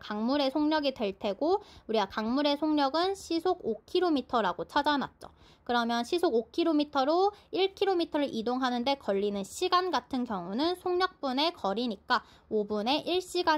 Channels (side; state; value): both; identical; correlation 1.00